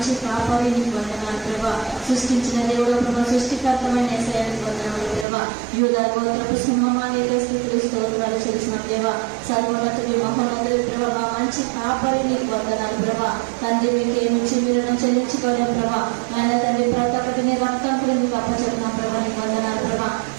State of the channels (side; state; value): left; drops out; at 5.2 s